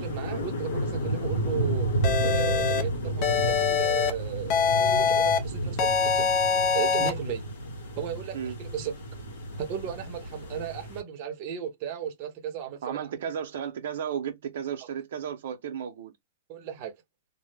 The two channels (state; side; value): normal; both; correlation -0.02